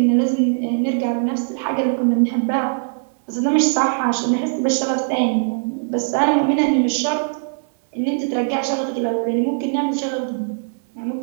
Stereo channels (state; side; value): silent; left; 65 dB below the other